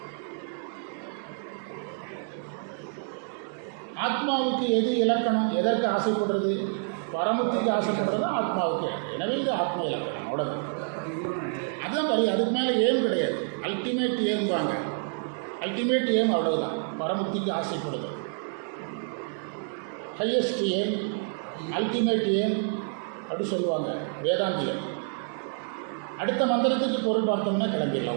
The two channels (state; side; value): silent; left; 59 dB below the other